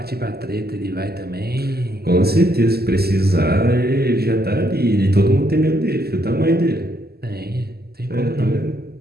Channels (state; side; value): late; left; 0.46 ms